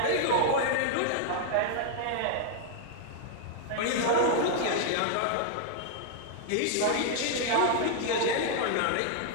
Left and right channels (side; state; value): both; different; correlation -0.01